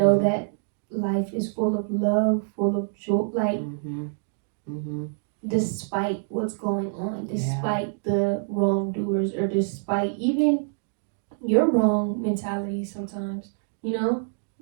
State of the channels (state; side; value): silent; left; digital silence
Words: that life is full of love, full of joy, like despite what's going on, despite the wrongdoers, or despite even your wrong mentality sometimes,